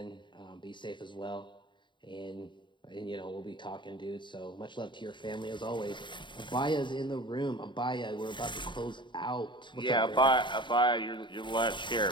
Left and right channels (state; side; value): late; right; 0.23 ms